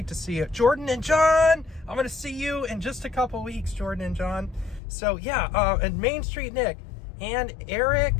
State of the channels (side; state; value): right; drops out; at 4.8 s